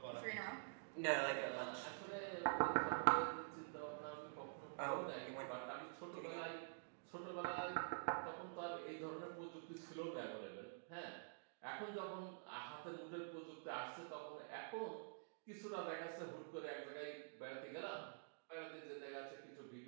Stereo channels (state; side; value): silent; left; digital silence